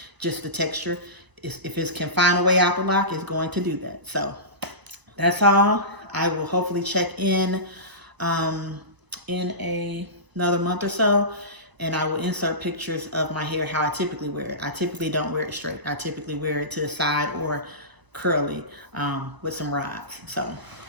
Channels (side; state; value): left; late; 1.0 ms